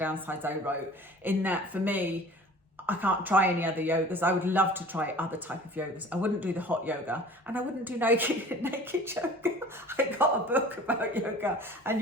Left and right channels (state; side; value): normal; both; correlation 0.44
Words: I wrote, in that for me, I can't try any other yogas. I would love to try other type of yogas. I wouldn't do the hot yoga, and I wouldn't do naked yoga. I got a book about yoga, and